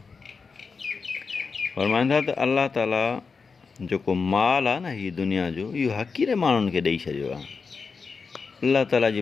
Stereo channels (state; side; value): quieter; right; 5.0 dB